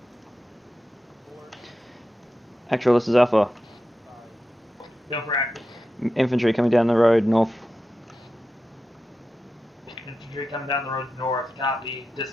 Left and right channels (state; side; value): normal; both; correlation 0.91